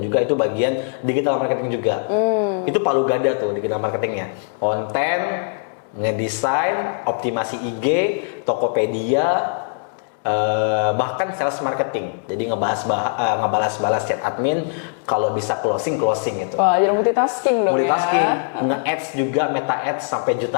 juga itu bagian digital marketing juga. Itu palu gada tuh digital marketingnya, konten, ngedesain, optimasi IG, Tokopedia, bahkan sales marketing. Jadi ngebalas chat admin, kalau bisa closing itu. Wah, jadi multitasking dong. Nge-ads juga, meta ads sampai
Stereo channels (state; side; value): silent; right; 65 dB below the other